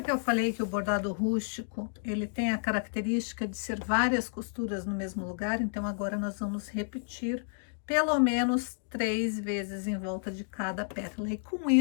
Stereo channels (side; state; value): right; silent; digital silence